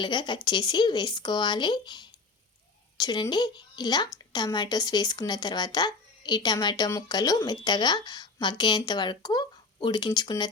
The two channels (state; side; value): quieter; right; 4.0 dB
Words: కట్ చేసి వేసుకోవాలి. చూడండి, ఇలా టమాటోస్ వేసుకున్న తర్వాత ఈ టమాటో ముక్కలు మెత్తగా మగ్గేంత వరకు ఉడికించుకున్న